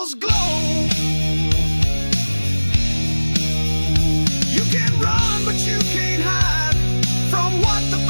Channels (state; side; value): inverted; both; correlation -1.00